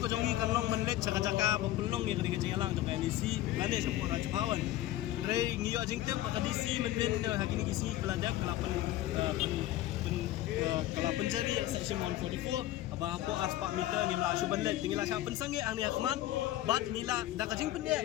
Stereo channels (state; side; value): quieter; right; 14.6 dB